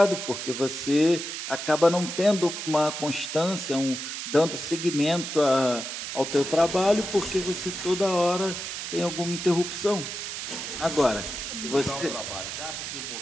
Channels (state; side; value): noise; right; hiss, 6 dB below the sound